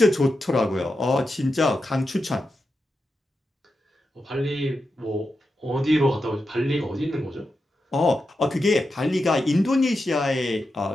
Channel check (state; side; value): normal; both; correlation 0.89